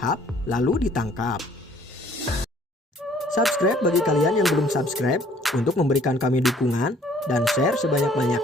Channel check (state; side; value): normal; both; correlation 0.58